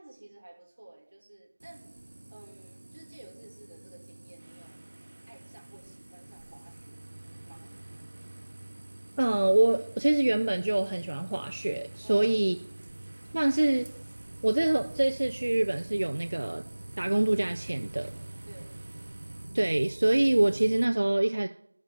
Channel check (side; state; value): both; inverted; correlation -1.00